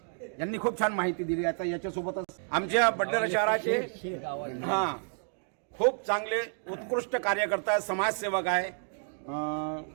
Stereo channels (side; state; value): left; silent; 58 dB below the other